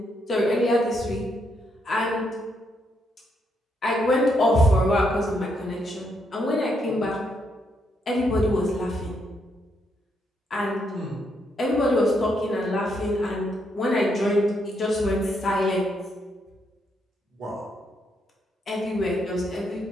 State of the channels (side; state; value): both; normal; correlation 0.77